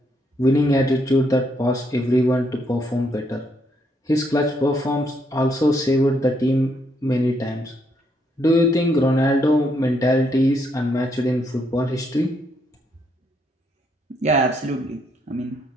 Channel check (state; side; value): normal; both; correlation 0.74